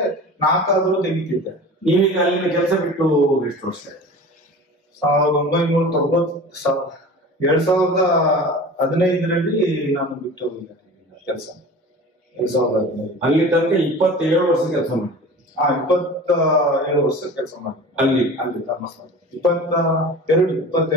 4 ತೆಗಿತಿದ್ದೆ. ನೀವೀಗ ಅಲ್ಲಿನ ಕೆಲಸ ಬಿಟ್ಟು ಎಷ್ಟು ವರ್ಷ ಆಯ್ತು? 2015ರಲ್ಲಿ ನಾನು ಬಿಟ್ಟು ಕೆಲಸ. 2015 ಅಲ್ಲಿ ತನಕ 27 ವರ್ಷ ಕೆಲಸ ಮಾಡಿ. 27 ವರ್ಷ ಕೆಲಸ ಮಾಡಿ ಅಲ್ಲಿ ಧರ್ಮಸ್ಥಳ.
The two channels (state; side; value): normal; both; correlation 0.37